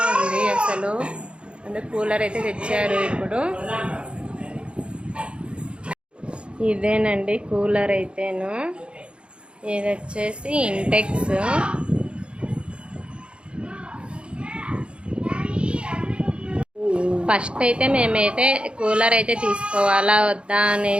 ఉంది అసలు. అందుకే కూలర్ అయితే తెచ్చారు. ఇప్పుడు ఇదేనండి కూలర్ అయితేను. ఇది వచ్చేసి ఇంటెక్స్. ఫస్ట్ అయితే మేమైతే కూలర్ అయితే తీసుకోవాలా వద్దా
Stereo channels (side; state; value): left; late; 0.057 ms